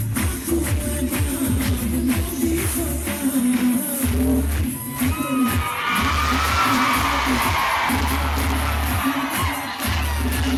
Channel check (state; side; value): identical; both; correlation 1.00